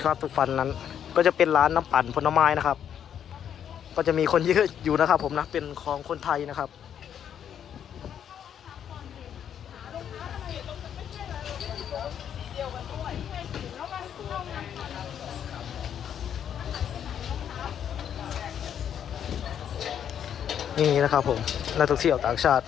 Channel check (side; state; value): right; quieter; 9.0 dB